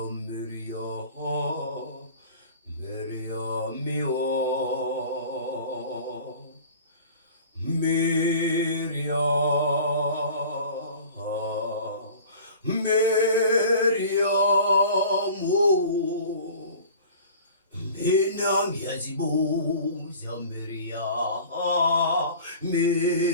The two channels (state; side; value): inverted; both; correlation -0.43